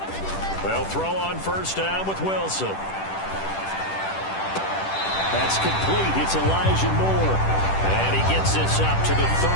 They'll throw on first down with Wilson. That's complete. It's Elijah Moore. And he gets this up to the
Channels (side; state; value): right; late; 10 ms